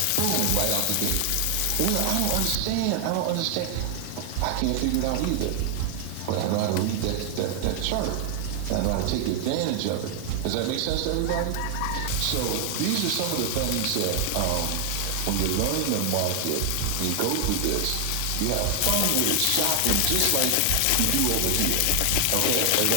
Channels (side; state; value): both; different; correlation 0.00